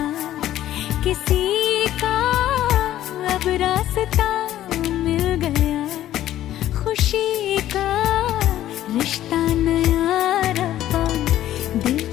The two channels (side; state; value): right; quieter; 12.9 dB